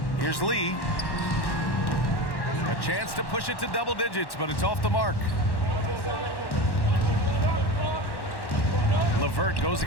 Here's Lee. A chance to push it to double digits, but it's off the mark. LeVert goes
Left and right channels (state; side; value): late; right; 1.1 ms